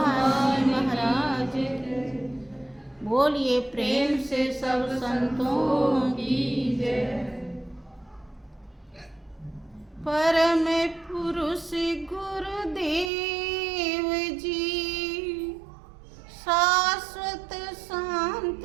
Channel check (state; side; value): drops out; left; at 13.1 s